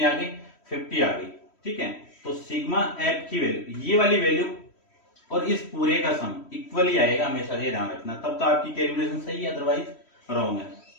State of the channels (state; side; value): late; right; 3.1 ms